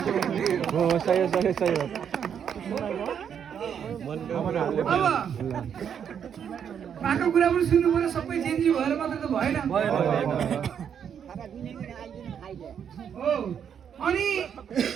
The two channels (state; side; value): quieter; left; 8.1 dB